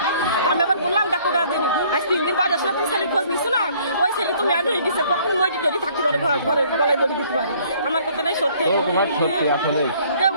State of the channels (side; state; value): both; inverted; correlation -0.59